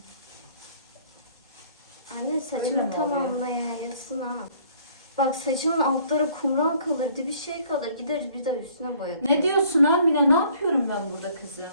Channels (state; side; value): inverted; both; correlation -0.58